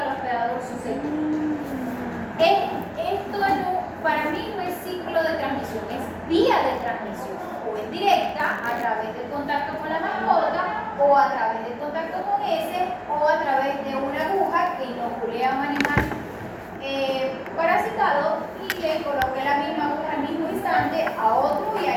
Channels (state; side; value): identical; both; correlation 1.00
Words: hospedador susceptible. Esto para mí no es ciclo de transmisión, es vía de transmisión. O es directa a través del contacto con la mascota, o a través del contacto con ese, o a través de una aguja que inocule a un animal parasitado y le coloque la misma aguja al mismo instante a otro y